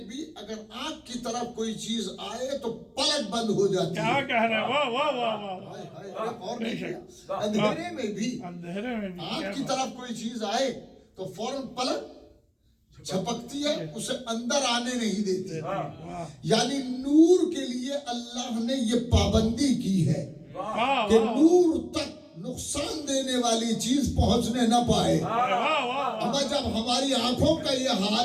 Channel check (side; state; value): both; identical; correlation 1.00